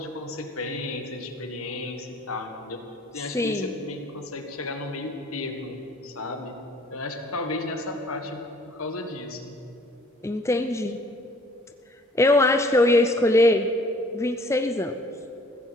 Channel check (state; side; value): normal; both; correlation 0.55